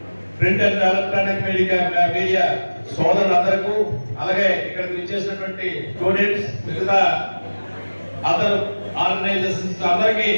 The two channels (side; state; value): both; inverted; correlation -1.00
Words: ప్రింట్ అండ్ ఎలక్ట్రానిక్ మీడియా సోదరులందరికీ, అలాగే ఇక్కడికి విచ్చేసినటువంటి స్టూడెంట్స్, మిగతా అదర్ ఆర్గనైజేషన్స్ అందరికీ